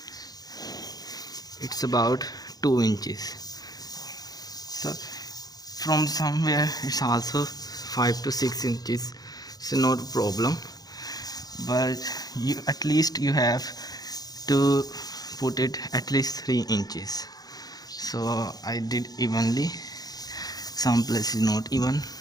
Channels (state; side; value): late; right; 0.19 ms